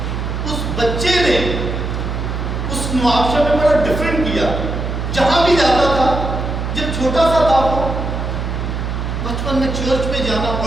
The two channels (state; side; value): noise; right; hum, 3 dB below the sound